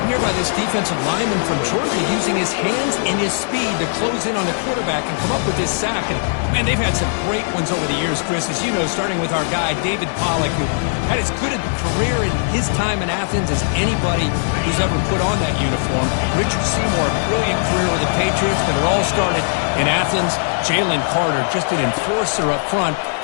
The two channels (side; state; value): right; silent; digital silence